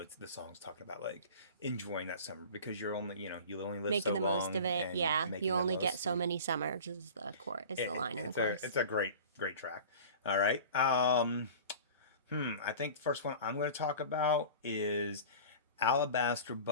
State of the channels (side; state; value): both; inverted; correlation -0.39